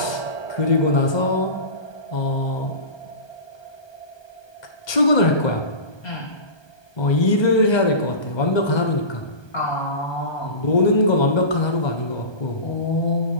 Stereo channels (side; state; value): right; late; 1.2 ms